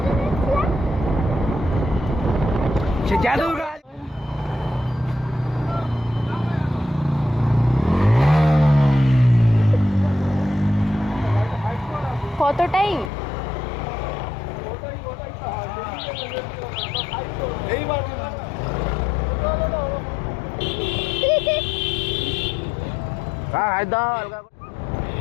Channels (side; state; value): right; drops out; at 13.1 s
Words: সে জাদুর কত টাইম?